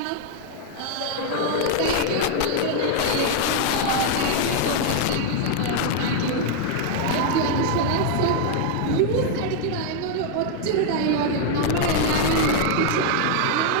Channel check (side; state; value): both; different; correlation 0.00